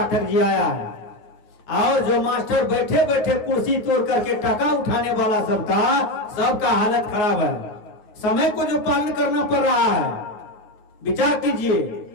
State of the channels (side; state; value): right; late; 9.5 ms